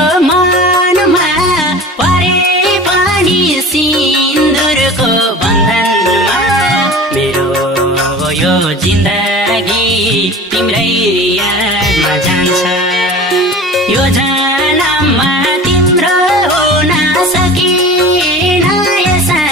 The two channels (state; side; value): normal; both; correlation 0.38